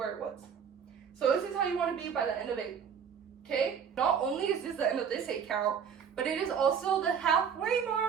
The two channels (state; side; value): quieter; left; 7.3 dB